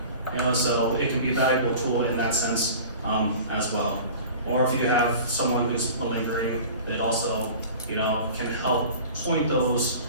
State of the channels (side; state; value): both; inverted; correlation -0.40